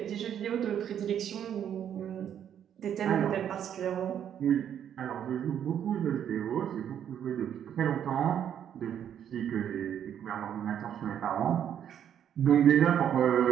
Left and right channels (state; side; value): quieter; left; 9.4 dB